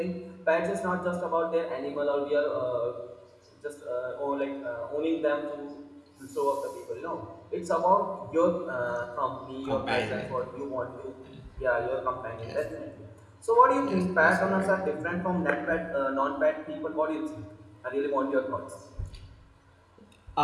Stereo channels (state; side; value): identical; both; correlation 1.00